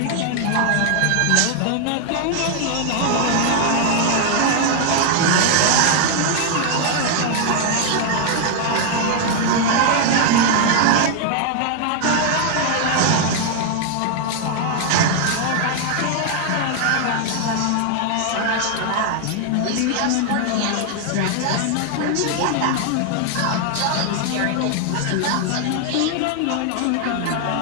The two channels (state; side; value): different; both; correlation 0.00